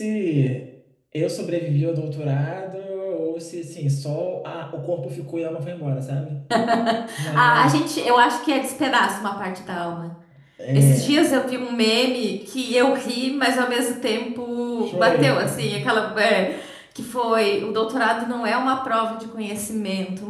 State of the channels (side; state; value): both; identical; correlation 1.00